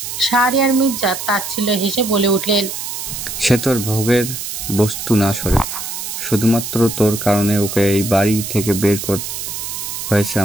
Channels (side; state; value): right; noise; hiss, 6 dB below the sound